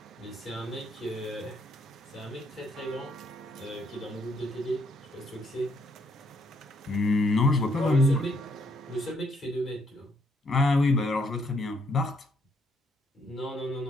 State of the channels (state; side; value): normal; both; correlation 0.72